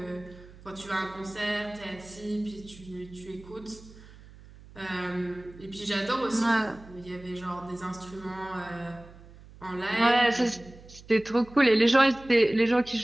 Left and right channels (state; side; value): noise; right; hum, 20 dB below the sound